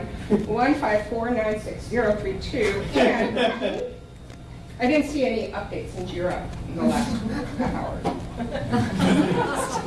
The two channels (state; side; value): identical; both; correlation 1.00